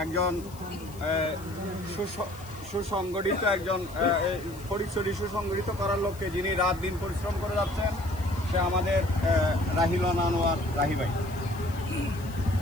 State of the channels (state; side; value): noise; left; hiss, 21 dB below the sound